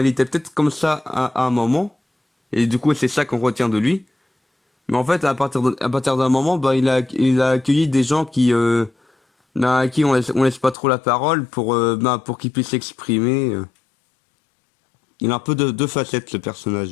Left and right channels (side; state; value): right; drops out; at 10.8 s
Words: était peut-être comme ça à un moment, et du coup c'est ça qu'on retient de lui. Mais en fait à partir d'un moment ben, il a accueilli des gens à qui on laisse pas trop la parole pour qu'ils puissent s'exprimer. Il a un peu de deux facettes ce